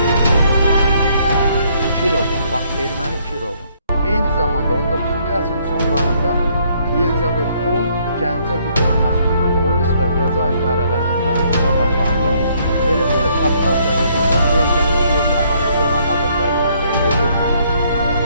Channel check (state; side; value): inverted; both; correlation -0.67